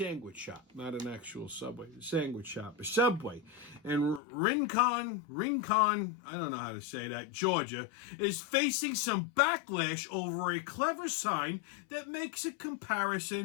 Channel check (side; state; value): right; drops out; at 4.2 s